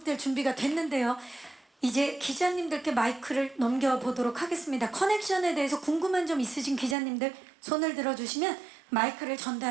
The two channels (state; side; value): drops out; left; at 7.0 s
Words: 준비가 됐는데요. 이제 기자님들께 마이크를 넘겨보도록 하겠습니다. 커넥션에 대해서 궁금한 점 있으신 기자님들 손을 들어주시면 마이크를